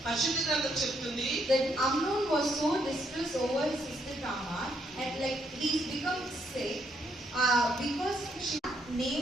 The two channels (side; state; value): both; normal; correlation 0.74